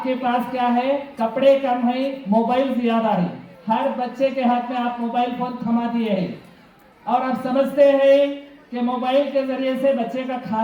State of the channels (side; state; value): both; identical; correlation 1.00